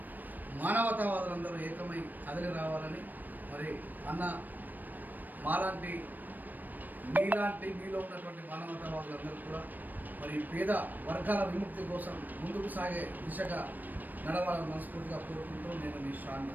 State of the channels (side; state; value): left; late; 0.088 ms